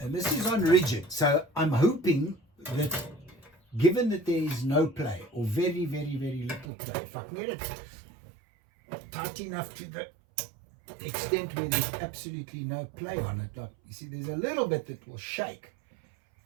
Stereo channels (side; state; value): left; drops out; at 6.7 s